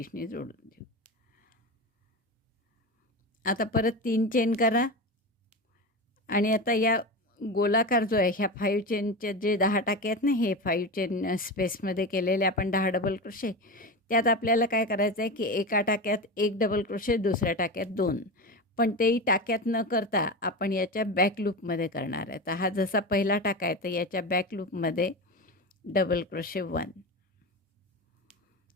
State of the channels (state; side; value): normal; both; correlation 0.23